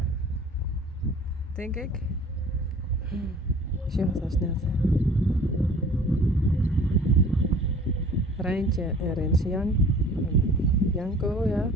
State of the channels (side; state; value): both; normal; correlation 0.47